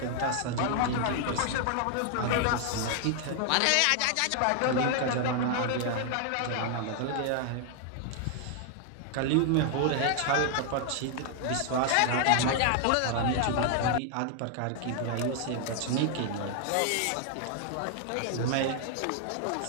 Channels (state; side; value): different; both; correlation 0.00